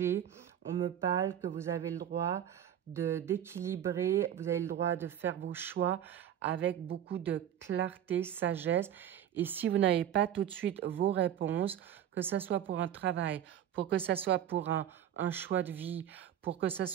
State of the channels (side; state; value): left; quieter; 10.4 dB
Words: on me parle que vous avez le droit d'équilibrer, vous avez le droit de faire vos choix avec beaucoup de clarté, sagesse. Et si vous n'avez pas tout de suite vos réponses, que ce soit pour un travail, pour que ce soit pour un choix de vie, pour que ce